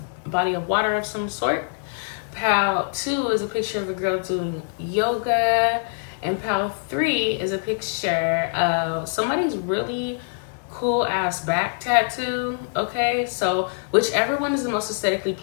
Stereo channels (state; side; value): silent; right; digital silence